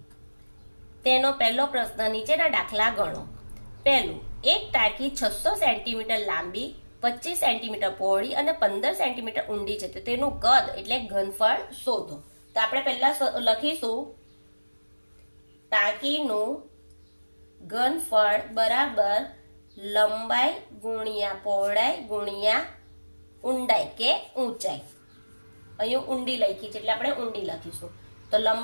તેનો પહેલો પ્રશ્ન નીચેના દાખલા ગણો. પહેલું, એક ટાંકી 600 સેન્ટીમીટર લાંબી, 25 સેન્ટીમીટર પહોળી અને 15 સેન્ટીમીટર ઊંડી છે, તો તેનું કદ એટલે ઘનફળ શોધો. તો આપણે પહેલા લખીશું ટાંકીનું ઘનફળ બરાબર લંબાઈ ગુણ્યા પહોળાઈ ગુણ્યા ઊંડાઈ કે ઊંચાઈ. અહીંયા ઊંડી લખી છે એટલે આપણે ઊંડી લખીશું. તો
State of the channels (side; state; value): both; inverted; correlation -1.00